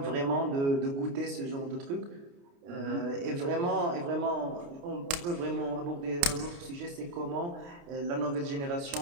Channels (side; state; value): left; late; 29 ms